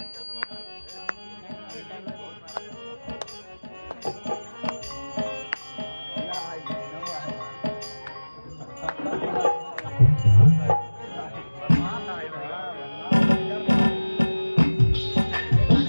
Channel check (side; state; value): both; inverted; correlation -1.00